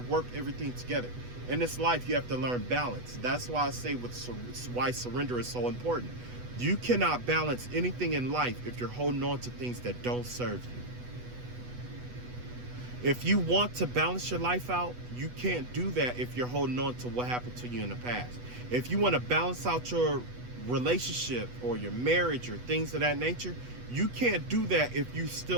work everything together. In this life, you have to learn balance. That's why I say why surrender is so important. You cannot balance anything in life if you're holding on to things that don't serve you. If you want to balance your life out, you can't do that if you're holding on to what happened to you in the past. If you want to balance out your relationship or your marriage or things of that nature, you can't do that if you're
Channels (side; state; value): left; late; 8.1 ms